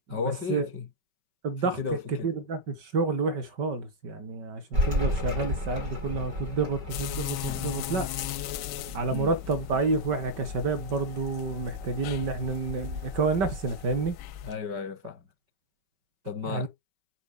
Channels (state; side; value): late; left; 5.2 ms